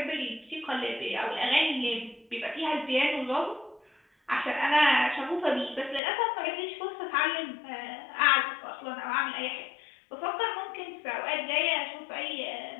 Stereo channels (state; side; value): drops out; right; at 6.0 s